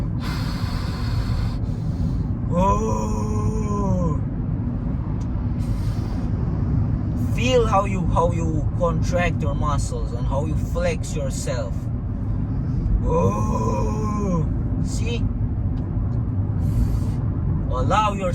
Feel how you contract your muscles and how you flex yourself. Oh, see? Allow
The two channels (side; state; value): both; identical; correlation 1.00